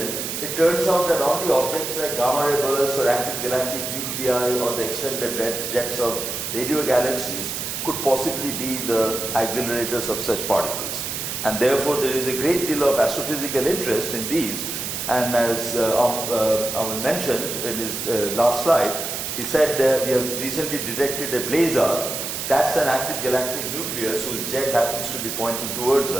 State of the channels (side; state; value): right; noise; hiss, 4 dB below the sound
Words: it turns out that only objects like gamma ray bursts or active galactic nuclei or the extended red jets of radio galaxies could possibly be the accelerators of such particles. And therefore, there is a great deal of astrophysical interest in these. And as Aman mentioned in his last slide, he said that we have recently detected a blazar. That's an active galactic nucleus whose jet happens to be pointing towards